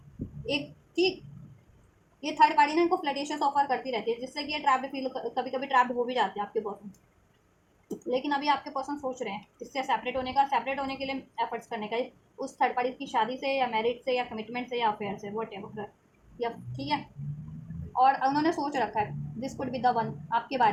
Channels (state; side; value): identical; both; correlation 1.00